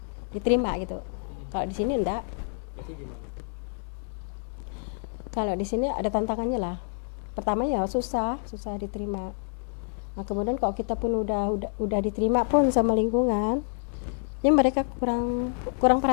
diterima gitu. Kalau di sini enggak. Itu gimana? Kalau di sini ada tantangannya lah. Pertama ya susah diterima. Nah, kemudian kalau kita pun udah diterima pun sama lingkungan, ya mereka kurang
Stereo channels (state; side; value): silent; right; 56 dB below the other